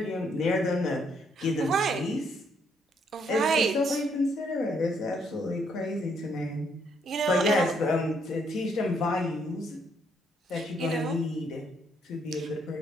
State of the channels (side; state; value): both; normal; correlation 0.71